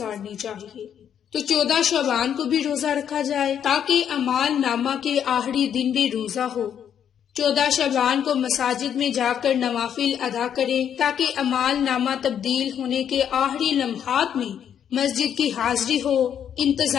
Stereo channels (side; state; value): right; quieter; 8.9 dB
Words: چاہیے؟ تو 14 شعبان کو بھی روزہ رکھا جائے تاکہ اعمال نامہ کے آخری دن بھی روزہ ہو۔ 14 شعبان کو مساجد میں جا کر نوافل ادا کریں تاکہ اعمال نامہ تبدیل ہونے کے آخری لمحات میں مسجد کی حاضری ہو،